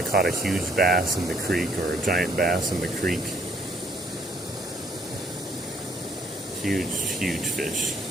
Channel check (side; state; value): both; normal; correlation 0.65